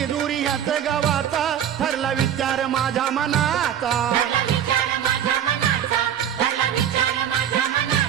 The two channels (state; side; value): quieter; left; 9.6 dB